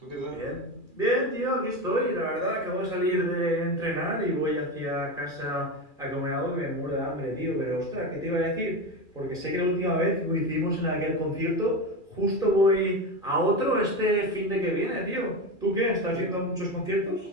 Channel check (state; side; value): late; right; 2.4 ms